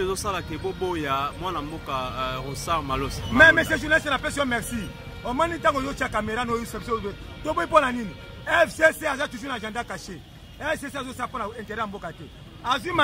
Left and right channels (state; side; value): identical; both; correlation 1.00